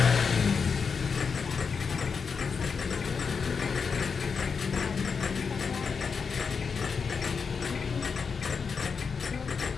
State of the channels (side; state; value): right; quieter; 5.6 dB